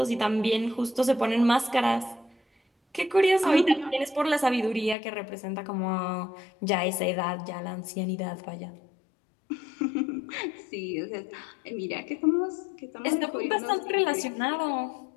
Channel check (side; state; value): right; drops out; at 5.0 s